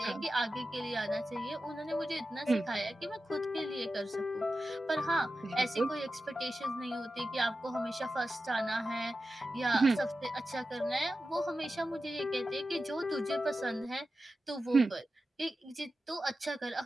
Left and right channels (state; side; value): normal; both; correlation 0.92